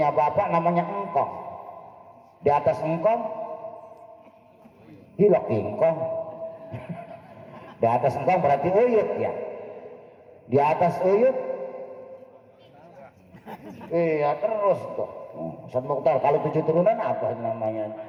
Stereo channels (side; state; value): both; identical; correlation 1.00